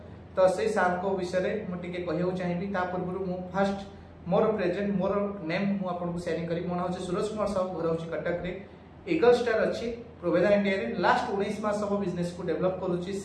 तो से सार को विषय मुझे कहूँ चाहिए पूर्व मु फास्ट मोर प्रेजेंट मोर नेम मु आपन को शेयरिंग करी मो नाम सूरज कुमार साहू घर होची कटक रे ईगल स्टार अच्छी प्रोवेदा इंडिया रे लास्ट 19 मास सब बिजनेस को डेवलप करूची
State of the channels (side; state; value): both; identical; correlation 1.00